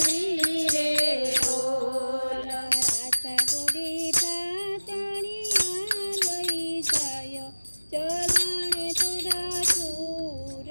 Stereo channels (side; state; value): both; inverted; correlation -1.00